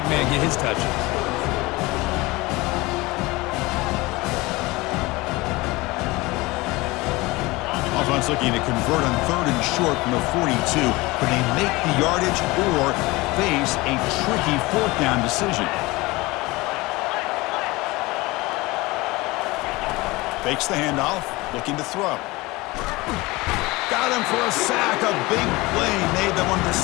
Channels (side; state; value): right; quieter; 21.9 dB